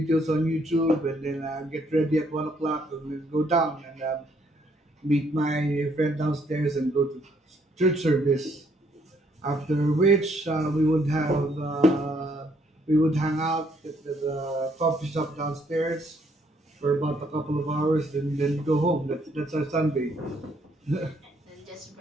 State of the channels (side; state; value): both; normal; correlation 0.69